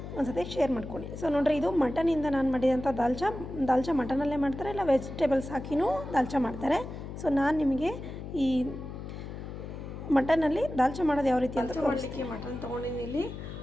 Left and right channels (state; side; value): noise; left; hum, 9 dB below the sound